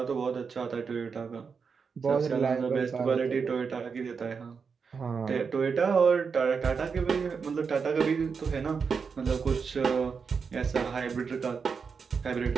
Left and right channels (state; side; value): quieter; left; 5.6 dB